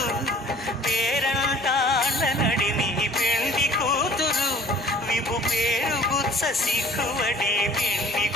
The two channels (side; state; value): both; normal; correlation 0.50